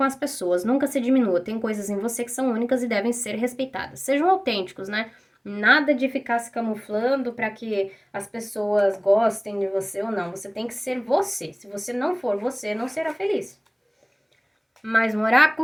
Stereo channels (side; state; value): both; identical; correlation 1.00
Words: as pessoas. Nunca se diminua. Tem coisas em você que são únicas e devem ser respeitadas. Sejam autênticos, né? Nada de ficar se camuflando para que as pessoas gostem de você ou não. Você tem que ser você. Se você não for você, não será feliz. Mais um